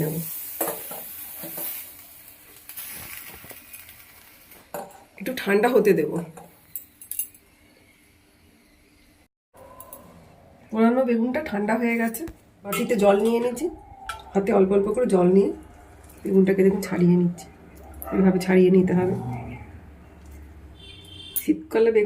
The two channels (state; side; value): identical; both; correlation 1.00